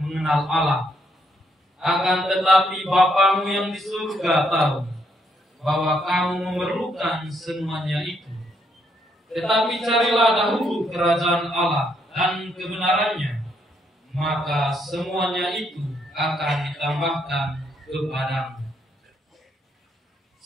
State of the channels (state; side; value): normal; both; correlation 0.74